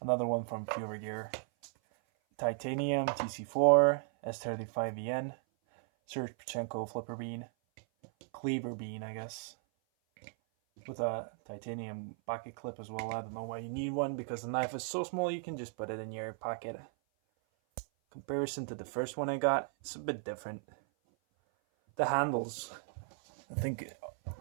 another one from Fura Gear, titanium, TC4, S35EN, Serge Panchenko flipper bean, Cleaver bean I guess, with a titanium pocket clip as well. I don't know why you need one because the knife is so small you can just put it in your pocket. Comparison to the first one I got, it's a bit different. The handles, I think.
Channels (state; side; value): silent; left; 54 dB below the other